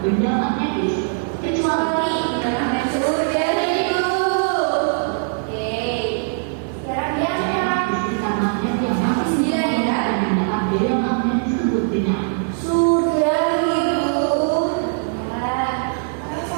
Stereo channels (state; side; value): silent; left; 65 dB below the other